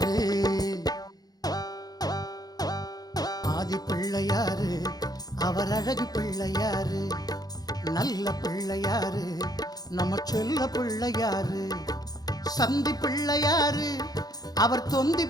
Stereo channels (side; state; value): right; late; 0.19 ms